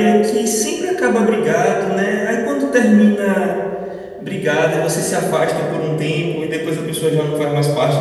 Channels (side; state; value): both; identical; correlation 1.00